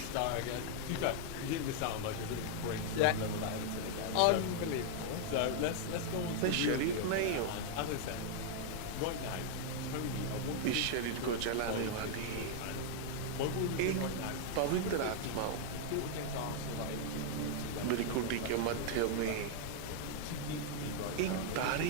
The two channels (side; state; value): both; different; correlation 0.00